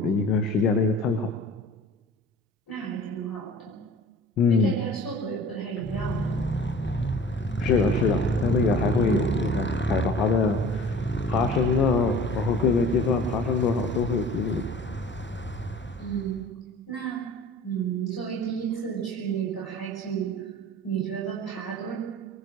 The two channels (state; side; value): normal; both; correlation 0.44